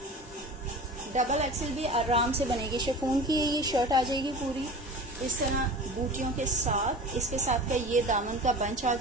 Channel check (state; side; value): normal; both; correlation 0.36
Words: डबल एक्सेल भी आराम से बनेगी। शिफॉन की ये शर्ट आ जाएगी पूरी इस तरह बूटियों के साथ। इसके साथ का ये दामन का बंच आ